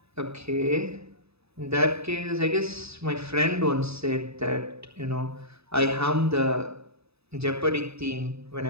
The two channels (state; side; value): late; left; 0.79 ms